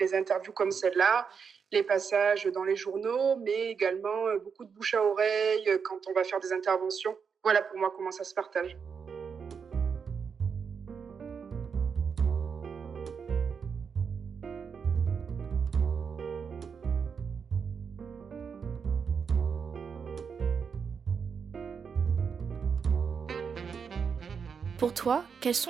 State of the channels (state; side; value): quieter; left; 6.2 dB